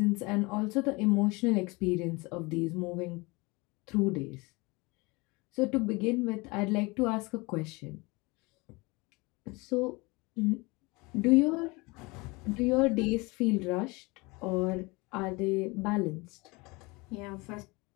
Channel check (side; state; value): right; quieter; 25.3 dB